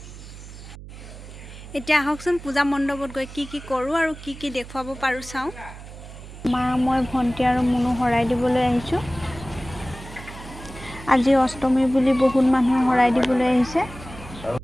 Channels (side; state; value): right; noise; hum, 15 dB below the sound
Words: এতিয়া আহকচোন পূজা মণ্ডপত গৈ কি কৰোঁ আৰু কি দেখুৱাব পাৰোঁ চাওঁ। মা, মই, ভণ্টি আৰু মুনু শৰাই দিবলৈ আহিছোঁ। আজি অষ্টমী বুলি বহুত মানুহে শৰাই দিবলৈ আহিছে।